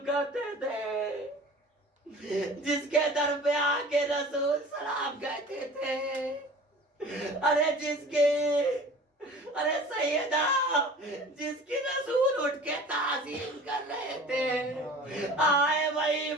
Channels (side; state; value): both; normal; correlation 0.43